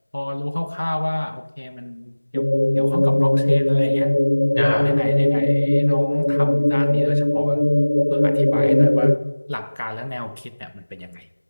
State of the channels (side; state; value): both; inverted; correlation -1.00